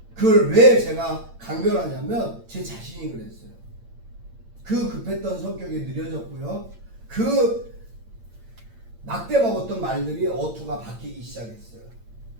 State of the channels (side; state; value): left; late; 8.8 ms